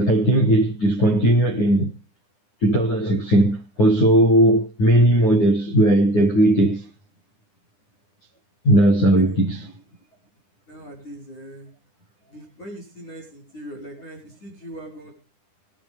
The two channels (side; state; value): right; late; 10 ms